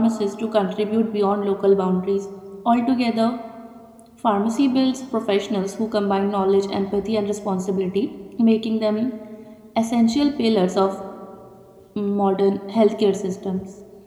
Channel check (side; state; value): both; identical; correlation 1.00